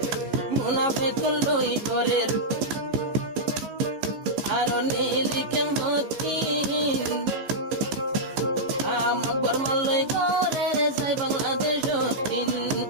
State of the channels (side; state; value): left; late; 15 ms